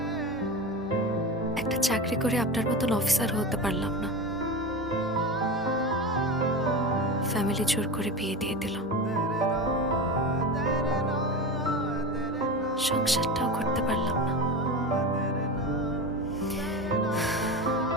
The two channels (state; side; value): normal; both; correlation 0.26